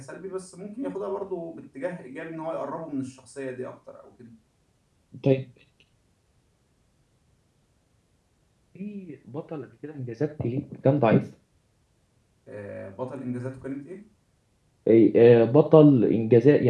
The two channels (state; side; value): identical; both; correlation 1.00